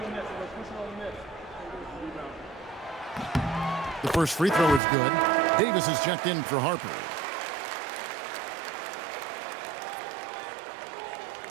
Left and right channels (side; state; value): left; drops out; at 4.8 s